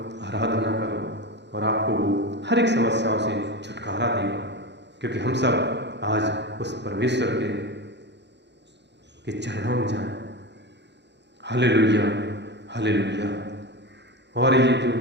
आराधना करो, और आपको वो हर एक समस्याओं से छुटकारा देगा। क्योंकि हम सब आज उस परमेश्वर के चरणों में जाएं। Hallelujah, hallelujah. और ये जो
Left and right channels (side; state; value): left; late; 0.51 ms